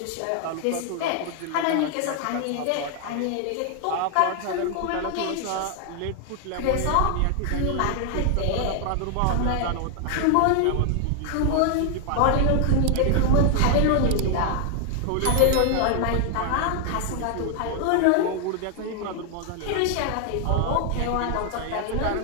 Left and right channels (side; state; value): both; different; correlation 0.00